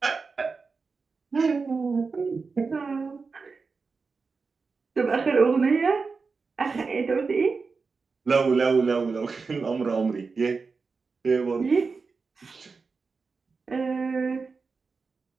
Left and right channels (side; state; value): left; quieter; 4.6 dB